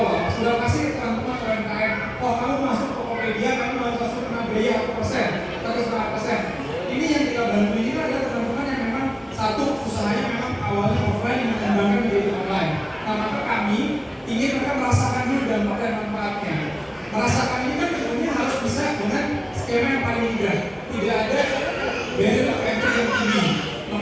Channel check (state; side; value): identical; both; correlation 1.00